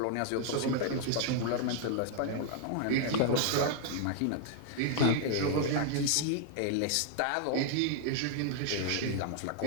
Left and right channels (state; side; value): different; both; correlation 0.00